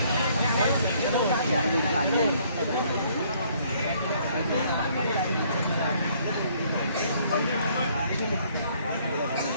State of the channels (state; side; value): inverted; both; correlation -0.64